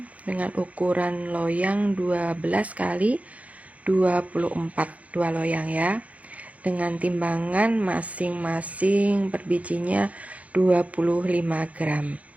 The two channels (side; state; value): left; late; 0.067 ms